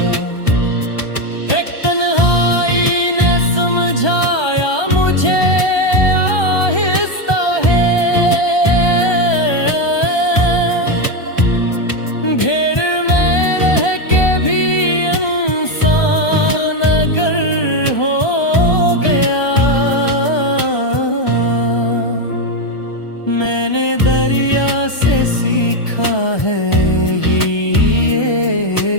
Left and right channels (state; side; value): late; right; 1.3 ms